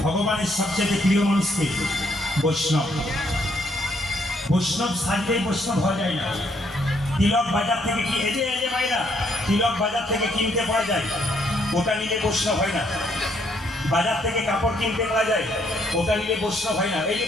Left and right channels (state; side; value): normal; both; correlation 0.71